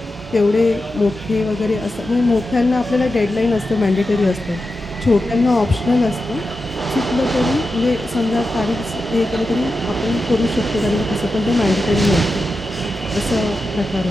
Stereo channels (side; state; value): both; normal; correlation 0.90